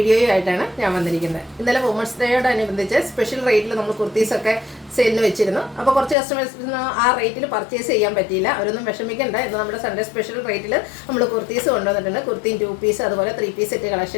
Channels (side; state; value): right; drops out; at 6.2 s